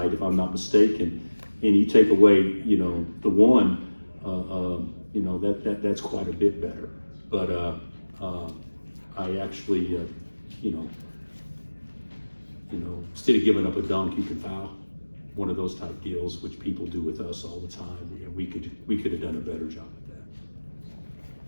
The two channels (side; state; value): both; inverted; correlation -1.00